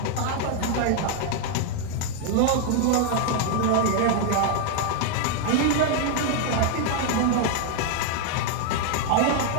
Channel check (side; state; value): both; different; correlation 0.00